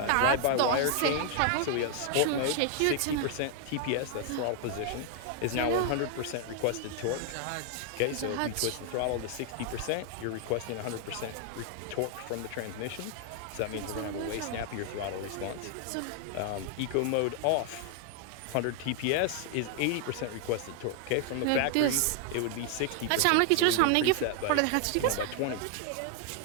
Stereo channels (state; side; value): different; both; correlation 0.00